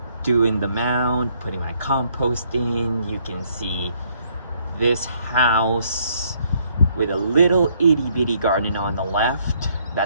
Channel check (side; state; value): both; inverted; correlation -0.68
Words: doing the mound, putting my compost in. You can see this house with a little itty bitty garden on the left.